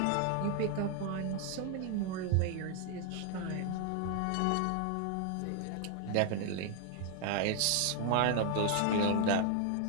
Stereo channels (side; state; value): both; different; correlation 0.00